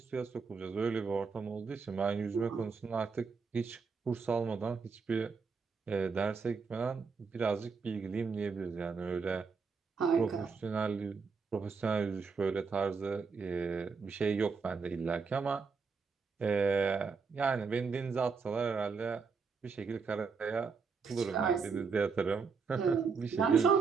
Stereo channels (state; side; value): quieter; left; 5.2 dB